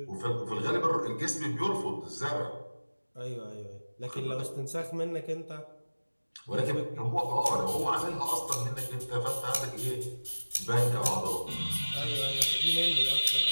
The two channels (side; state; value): both; inverted; correlation -1.00